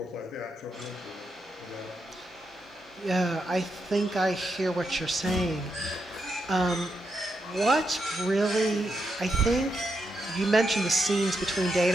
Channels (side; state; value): both; normal; correlation 0.83